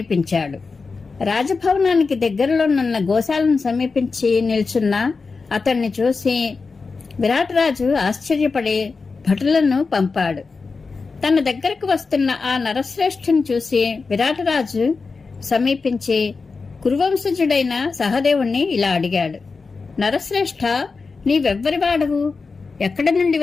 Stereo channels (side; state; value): right; quieter; 4.4 dB